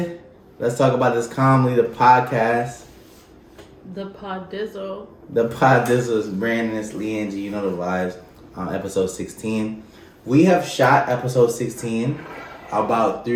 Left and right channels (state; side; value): identical; both; correlation 1.00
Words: Let's talk about this calmly. The podcast. The Podizzle. The Podizzle is Brandon, it's Lee Angie. You know the vibes. Episode 16. We have shot episode 16 about